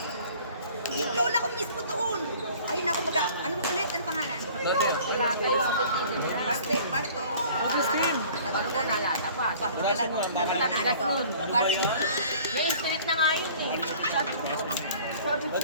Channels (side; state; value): both; inverted; correlation -0.49